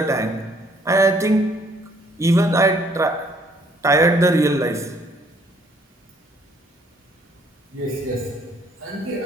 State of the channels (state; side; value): normal; both; correlation 0.63